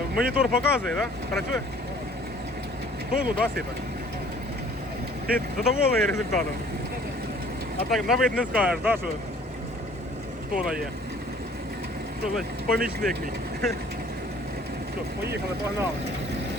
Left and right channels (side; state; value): both; normal; correlation 0.54